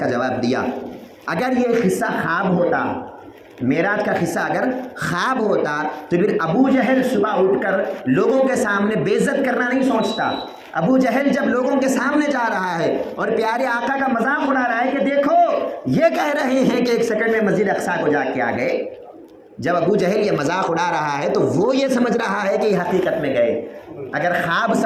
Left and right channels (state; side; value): identical; both; correlation 1.00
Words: جواب دیا، اگر یہ قصہ خواب ہوتا، معراج کا قصہ اگر خواب ہوتا تو پھر ابو جہل صبح اٹھ کر لوگوں کے سامنے بے عزت کرنا نہیں سوچتا۔ ابو جہل جب لوگوں کے سامنے جا رہا ہے اور پیارے آقا کا مذاق اڑا رہا ہے کہ دیکھو یہ کہہ رہے ہیں کہ 1 سیکنڈ میں مسجد اقصیٰ کو جا کے آ گئے، جب ابو جہل یہ مذاق اڑا رہا ہے تو وہ یہ سمجھ رہا ہے کہ یہ حقیقت میں گئے۔ اگر خواب